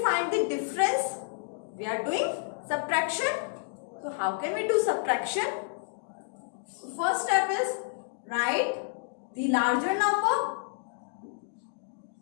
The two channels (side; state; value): right; silent; digital silence